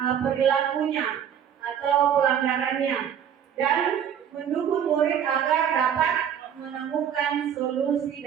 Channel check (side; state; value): left; quieter; 8.8 dB